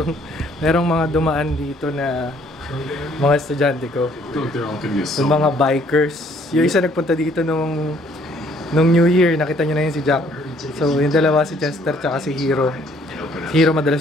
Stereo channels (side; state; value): both; normal; correlation 0.62